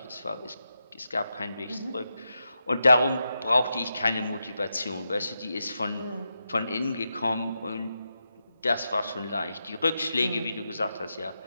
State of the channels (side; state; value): both; inverted; correlation -0.87